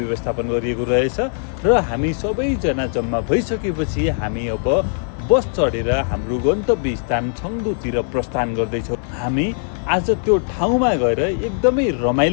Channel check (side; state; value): right; silent; digital silence